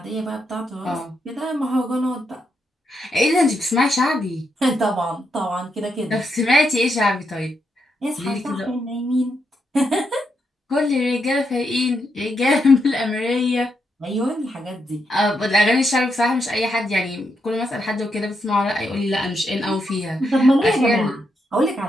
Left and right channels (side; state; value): both; normal; correlation 0.81